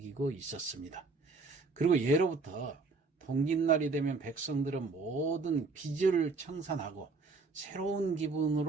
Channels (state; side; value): quieter; left; 4.0 dB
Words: 있었습니다. 그리고 예로부터 동기날이 되면 백성들은 모든 빚을 청산하고 새로운